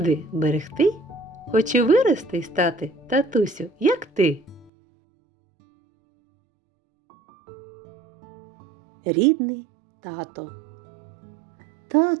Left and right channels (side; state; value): left; drops out; at 4.7 s